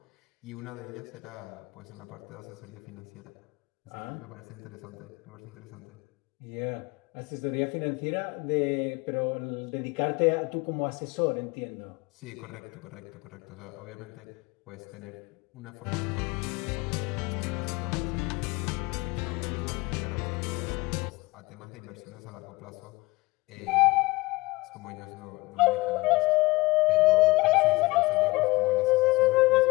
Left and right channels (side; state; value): right; quieter; 22.4 dB